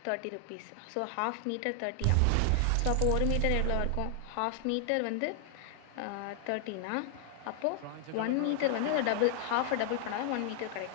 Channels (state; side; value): different; both; correlation 0.00